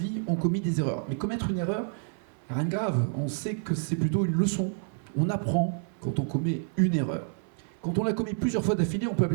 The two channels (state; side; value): silent; left; 56 dB below the other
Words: ont commis des erreurs. Mais commettre une erreur, rien de grave. On sait que c'est plutôt une leçon. On apprend quand on commet une erreur. Quand on l'a commis plusieurs fois d'affilée, on peut